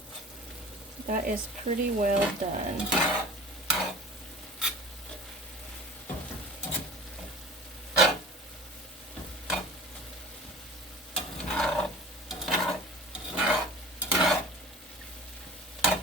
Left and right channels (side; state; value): both; normal; correlation 0.40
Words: that is pretty well done.